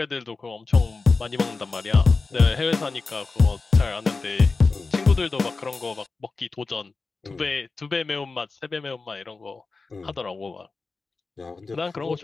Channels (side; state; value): right; quieter; 4.0 dB